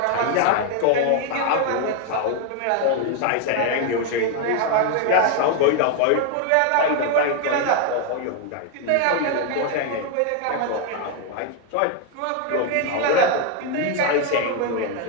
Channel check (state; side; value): different; both; correlation 0.00